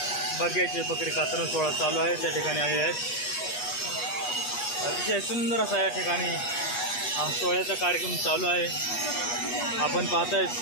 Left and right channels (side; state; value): right; late; 8.3 ms